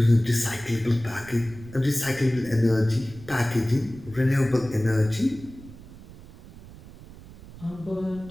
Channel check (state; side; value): noise; right; rumble, 18 dB below the sound